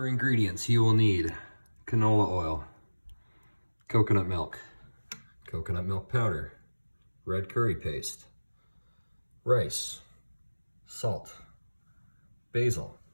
ingredients, you will need canola oil, coconut milk powder, red curry paste, rice, salt, basil,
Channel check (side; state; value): both; inverted; correlation -1.00